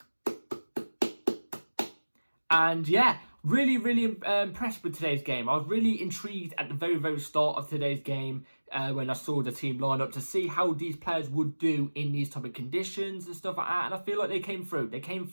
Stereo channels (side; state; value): both; inverted; correlation -1.00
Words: And yeah, really, really impressed with today's game. I was really intrigued at the very, very start of today's game when I saw the team line up to see how these players would do in these type of conditions and stuff like that. And I feel like they came through.